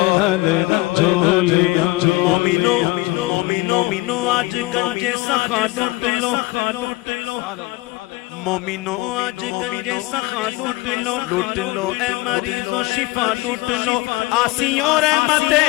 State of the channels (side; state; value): right; quieter; 21.2 dB